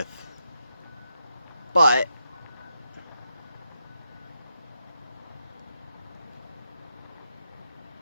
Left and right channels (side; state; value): both; inverted; correlation -0.84